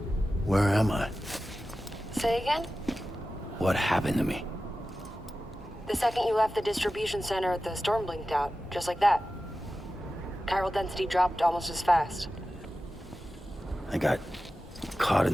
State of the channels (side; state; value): both; normal; correlation 0.94